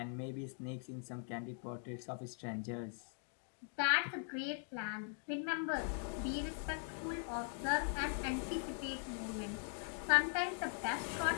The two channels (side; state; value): right; silent; 50 dB below the other